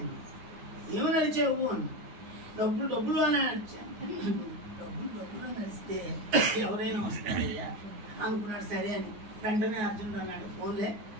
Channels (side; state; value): left; late; 9.6 ms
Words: ఏమని అరిచావు అని, డబ్బులు అని అరిచాను. డబ్బులు అని అరిస్తే ఎవరైనా వస్తారయ్యా అనుకున్నాడు. సరే అని వెంటనే అర్జునుడు అన్నాడు, ఫోన్లే